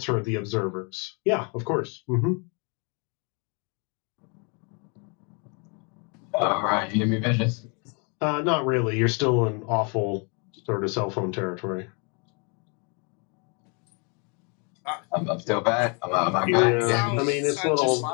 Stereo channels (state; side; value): quieter; right; 34.9 dB